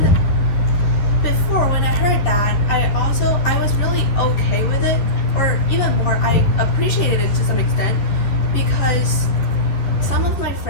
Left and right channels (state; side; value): late; right; 11 ms